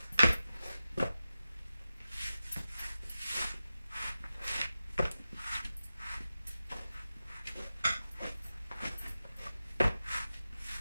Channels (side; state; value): both; inverted; correlation -0.93